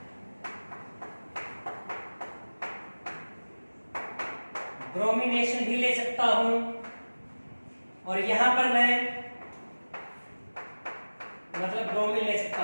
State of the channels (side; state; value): both; inverted; correlation -1.00